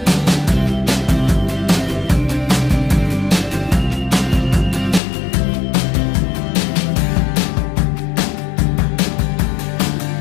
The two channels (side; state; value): right; drops out; at 5.0 s